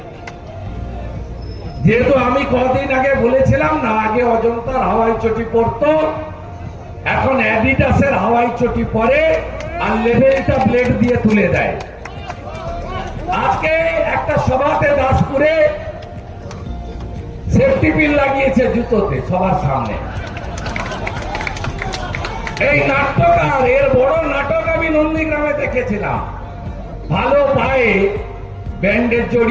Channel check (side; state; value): both; identical; correlation 1.00